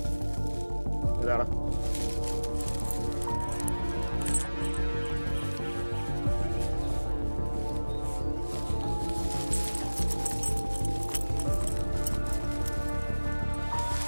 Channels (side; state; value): both; inverted; correlation -1.00